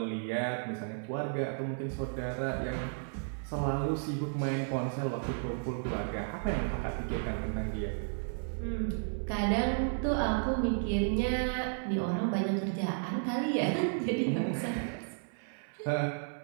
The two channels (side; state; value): left; silent; 56 dB below the other